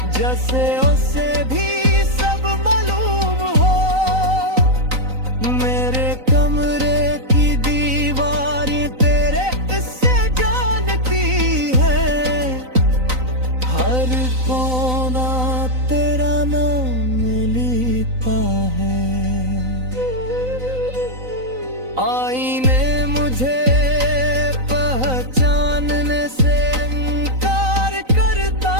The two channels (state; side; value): late; left; 3.9 ms